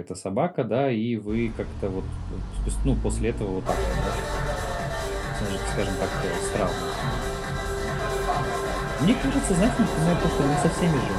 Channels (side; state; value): both; identical; correlation 1.00